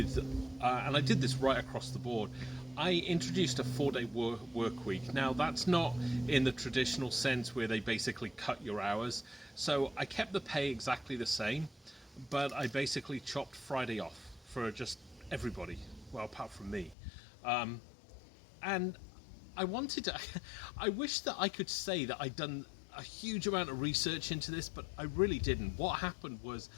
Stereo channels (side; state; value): right; drops out; at 16.9 s